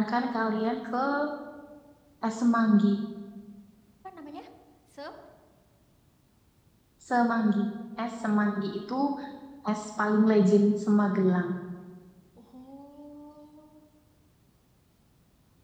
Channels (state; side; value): identical; both; correlation 1.00